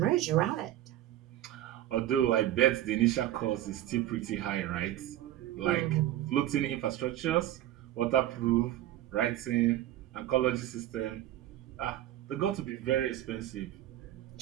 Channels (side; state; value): left; quieter; 13.4 dB